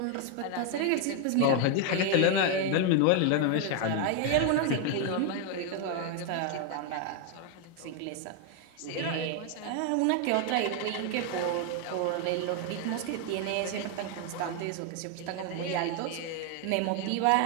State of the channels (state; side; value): different; both; correlation 0.01